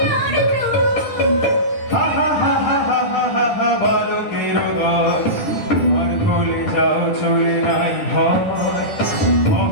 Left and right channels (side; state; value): right; late; 10 ms